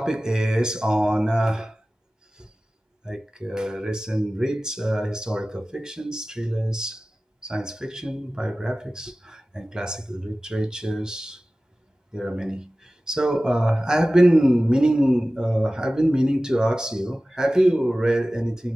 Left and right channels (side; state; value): both; normal; correlation 0.96